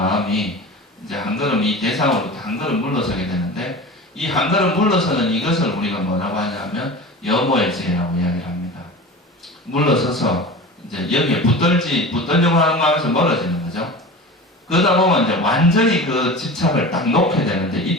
이제 한 걸음 이 대상으로 한 걸음 물러서게 되는데 이 한 걸음 물러서는 이것을 우리가 뭐라고 하냐면 여모의 지혜라고 이야기를 합니다. 물러서서 이제 여기에 붙들려고 하는 마음에서 멀어지는 거죠. 그러다 보면 이제 완전히 그 집착을 딱 놓게 되는데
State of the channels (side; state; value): both; normal; correlation 0.33